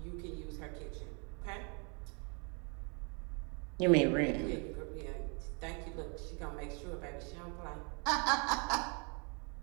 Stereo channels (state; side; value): quieter; left; 35.0 dB